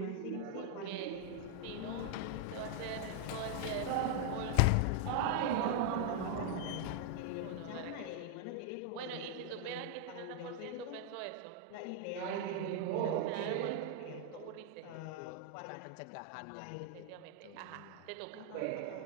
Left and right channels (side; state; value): both; different; correlation 0.00